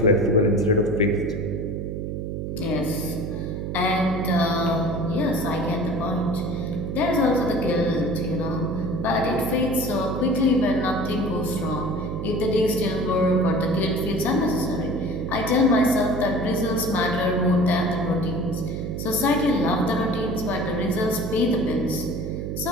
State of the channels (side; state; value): right; noise; hum, 4 dB below the sound